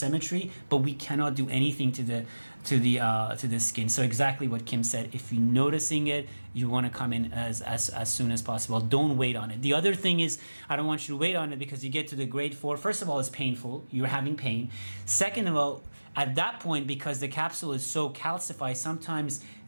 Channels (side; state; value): both; inverted; correlation -1.00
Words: but we cannot do anything to the skin. So exactly what Kim said. If you're noticing it, you want to come in as soon as possible. Don't wait on it. The other thing is, I don't want you to wait on it, because you get to the grade 4. First of all, it's painful. You're having pain. Second of all, at that point, because the capsule is so calcified, sometimes,